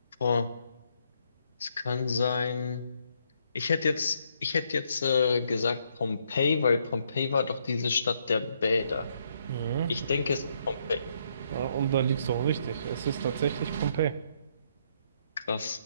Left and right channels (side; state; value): both; inverted; correlation -0.73